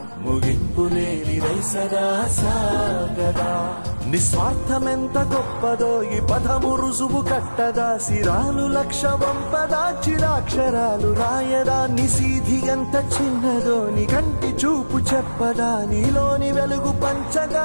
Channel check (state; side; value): inverted; both; correlation -1.00